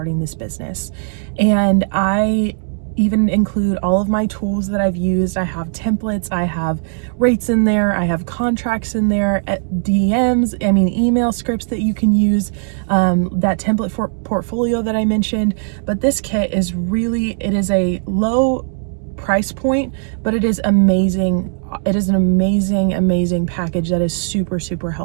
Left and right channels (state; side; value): silent; left; digital silence